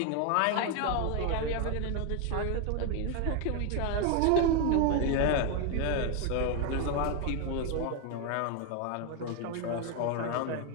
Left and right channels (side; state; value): both; different; correlation 0.01